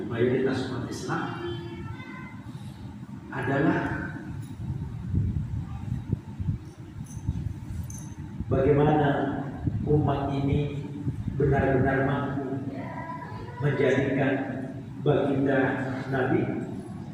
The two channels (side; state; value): both; identical; correlation 1.00